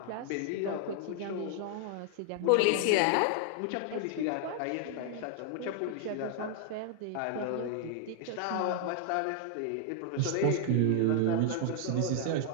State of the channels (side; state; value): both; different; correlation 0.00